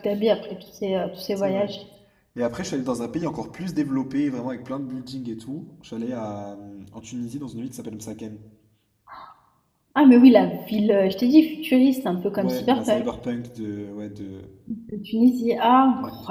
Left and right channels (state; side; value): identical; both; correlation 1.00